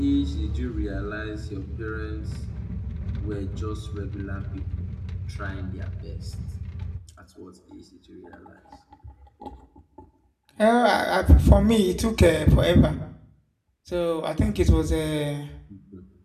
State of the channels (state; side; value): identical; both; correlation 1.00